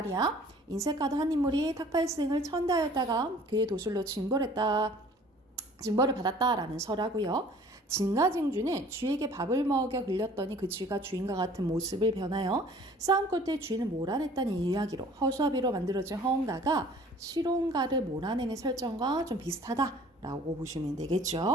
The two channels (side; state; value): both; normal; correlation 0.51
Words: 인색하다 한 인물이 탁발생을 천대하였다가 그의 도술로 징벌을 받았다라는 설화고요. 진가쟁주는 쥐에게 밥을 먹여 흘렸더니 그 쥐가 주인과 같은 모습을 변하여 싸움 끝에 주인을 몰아냈다는 이야기로 허수아비로 만들어진 허운가가 실온가를 몰아내는 설정과 좀 비슷하다라고 보시면